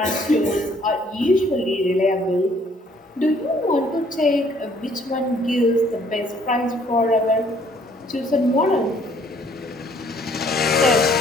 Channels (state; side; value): normal; both; correlation 0.62